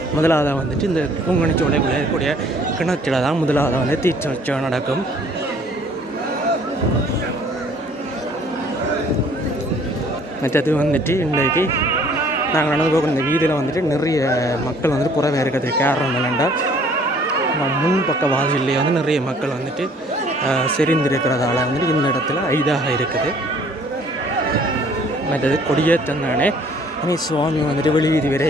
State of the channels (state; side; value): normal; both; correlation 0.57